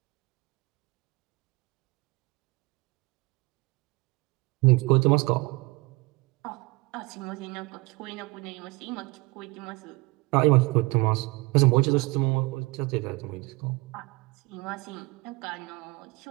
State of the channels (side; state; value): left; quieter; 24.4 dB